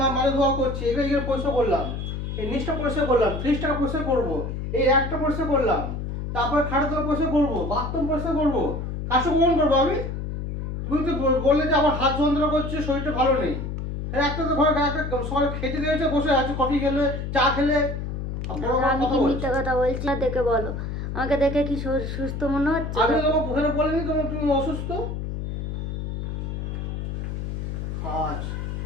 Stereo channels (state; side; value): noise; left; hum, 5 dB below the sound